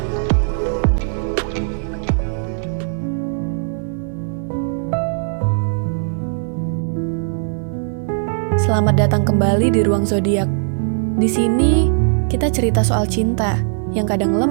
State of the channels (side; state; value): left; silent; 67 dB below the other